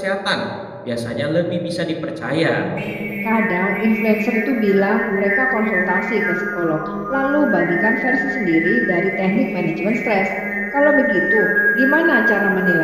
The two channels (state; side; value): identical; both; correlation 1.00